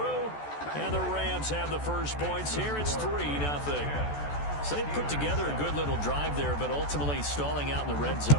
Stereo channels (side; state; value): right; late; 14 ms